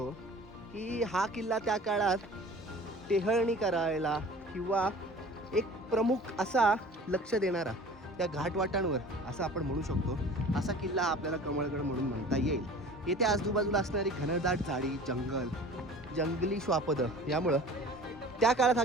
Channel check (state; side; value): normal; both; correlation 0.43